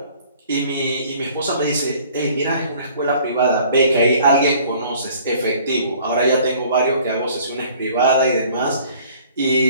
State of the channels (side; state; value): both; inverted; correlation -0.54